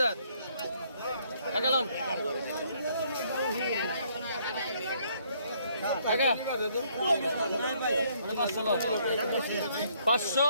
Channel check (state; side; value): inverted; both; correlation -0.67